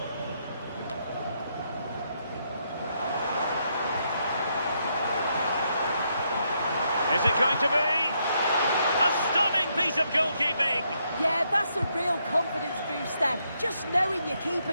Is it going to be? A stunning piece of goalkeeping! Yeah, that's a real confidence booster. Just knowing your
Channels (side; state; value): both; inverted; correlation -0.76